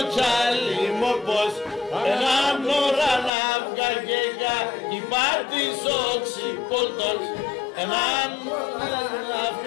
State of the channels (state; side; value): drops out; right; at 3.3 s